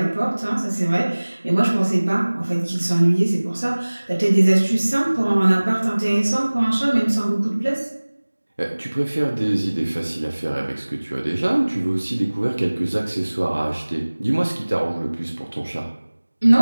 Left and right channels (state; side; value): inverted; both; correlation -1.00